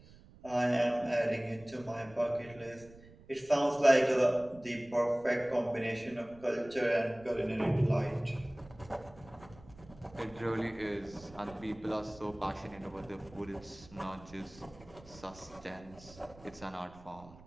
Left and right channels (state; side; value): noise; right; rumble, 22 dB below the sound